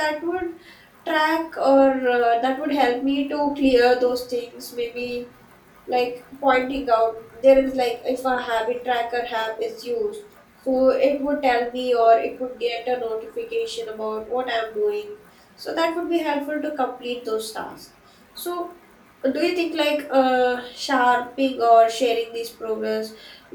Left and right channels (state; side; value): identical; both; correlation 1.00